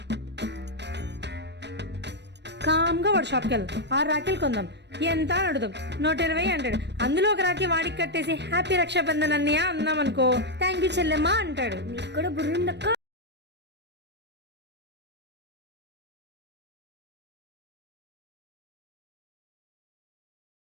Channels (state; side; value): late; left; 0.50 ms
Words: కామ్గా వాడు షాప్కి వెళ్దాం, 6 రాఖీలు కొందాం. ఎంత అని అడుగుదాం, 120 అంటాడు. అందులో ఒక రాఖీ వాడికి కట్టేసి హ్యాపీ రక్షాబంధన్ అన్నయ్య అన్నాం అనుకో, థ్యాంక్ యూ చెల్లెమ్మా అంటాడు. నీకు కూడా బుర్రుందక్క.